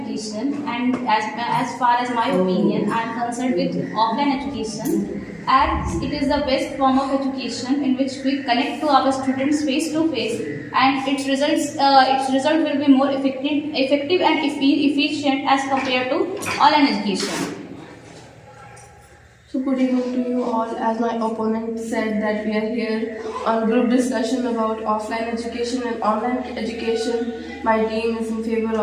and as far as my opinion, I am concerned with offline education, as it is the best form of education in which we connect to our students face to face, and its result will be more effective and efficient as compared to online education. So good evening to you all. As my opponent said that we are here on group discussion about offline education and online education. My team is in favor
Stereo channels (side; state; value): both; identical; correlation 1.00